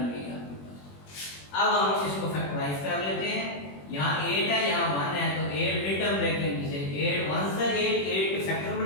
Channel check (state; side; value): late; right; 21 ms